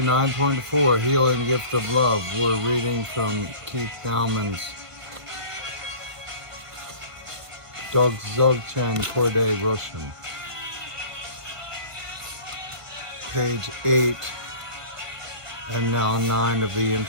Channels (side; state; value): left; late; 1.5 ms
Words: Healing Gift of Love. We're reading from Dowman'S Dzogchen, Khorde, Rushen. Page 8 and now 9 of the